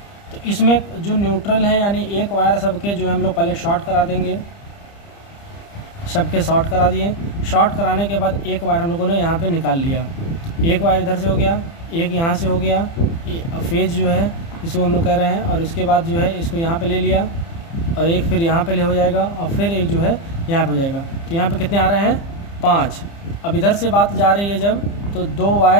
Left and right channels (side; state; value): right; late; 30 ms